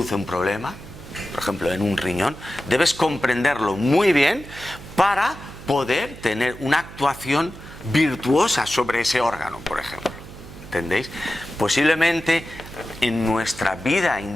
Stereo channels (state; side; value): noise; right; hum, 15 dB below the sound